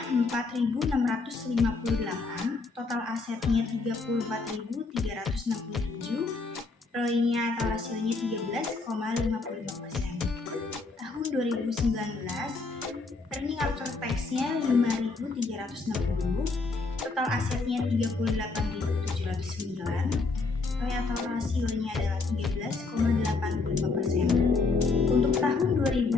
4.658, total asetnya 34.367, ROI-nya atau rasionya 13,55%. Tahun 2019, earning after tax-nya 5.360, total asetnya 38.709, ROI atau rasionya adalah 13,85%. Untuk tahun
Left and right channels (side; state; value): right; quieter; 3.9 dB